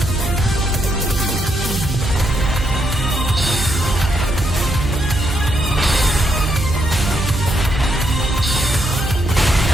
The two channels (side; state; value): right; noise; hum, 4 dB below the sound